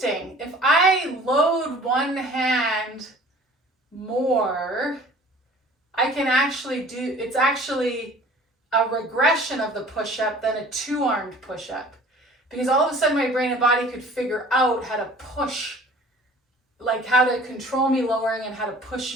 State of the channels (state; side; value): normal; both; correlation 0.48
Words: If I load one hand more, I can actually do, it's actually a regression of the push-up than a two-armed push-up. Because all of a sudden my brain and body could figure out how to push, like how to control me lowering and how to